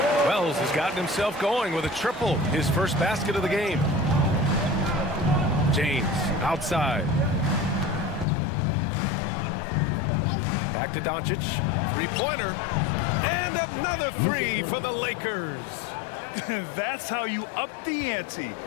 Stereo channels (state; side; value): drops out; right; at 8.2 s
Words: Wells has gotten himself going with a triple. His first basket of the game. James outside. Back to Doncic. 3-pointer. And another 3 for the Lakers. That's how you up the ante.